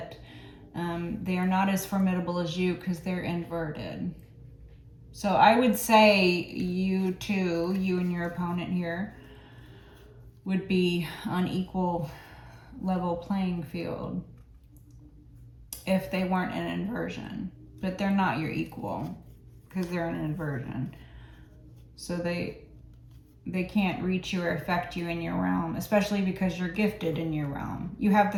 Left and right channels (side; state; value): both; identical; correlation 1.00